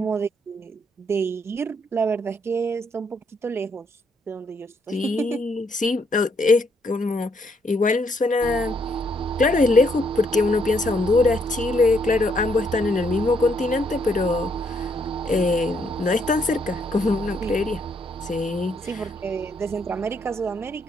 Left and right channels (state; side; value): normal; both; correlation 0.72